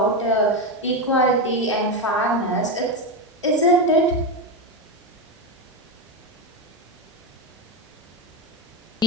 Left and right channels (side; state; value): both; normal; correlation 0.11